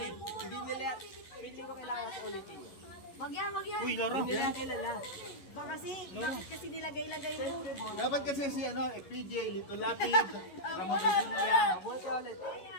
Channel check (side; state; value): right; late; 11 ms